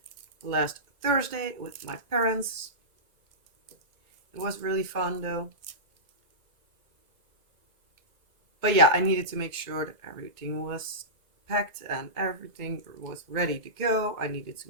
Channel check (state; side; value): late; left; 2.0 ms